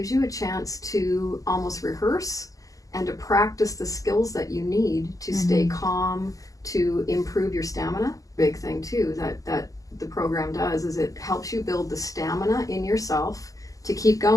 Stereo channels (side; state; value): right; late; 0.17 ms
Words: you a chance to almost rehearse and to practice the skills that you need to stay calm, to improve your stamina. Big thing too that the program does is it helps you build the stamina in yourself to keep